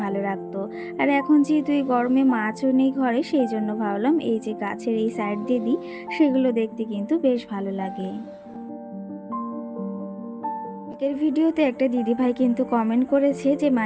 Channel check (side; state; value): both; identical; correlation 1.00